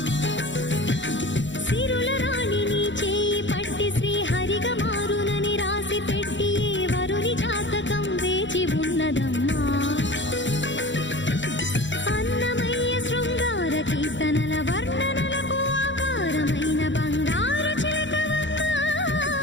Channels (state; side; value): late; right; 0.54 ms